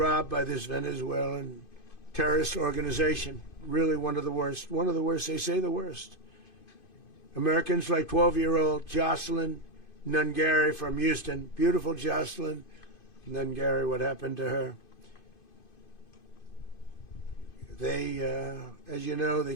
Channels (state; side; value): late; right; 2.5 ms